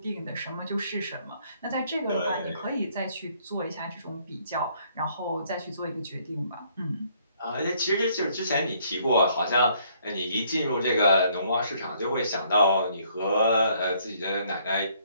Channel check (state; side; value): inverted; both; correlation -0.66